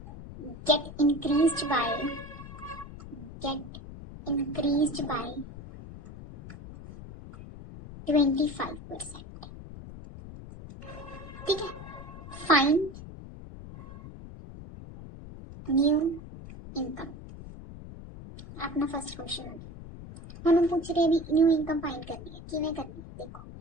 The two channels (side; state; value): left; noise; rumble, 14 dB below the sound